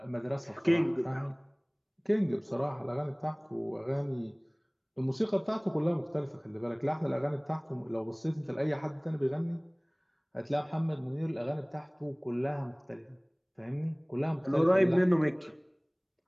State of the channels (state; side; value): identical; both; correlation 1.00